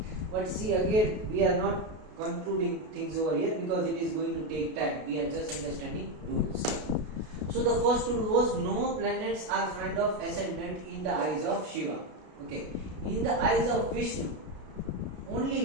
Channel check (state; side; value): late; left; 33 ms